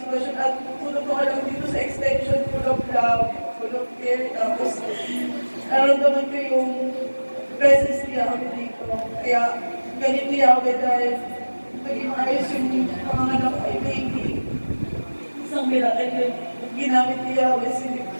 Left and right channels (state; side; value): inverted; both; correlation -1.00